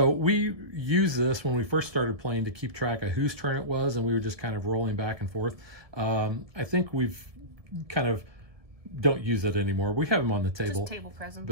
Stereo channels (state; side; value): late; left; 1.7 ms